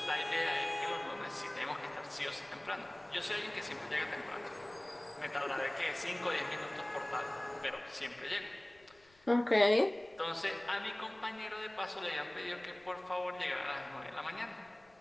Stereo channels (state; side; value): noise; left; rumble, 29 dB below the sound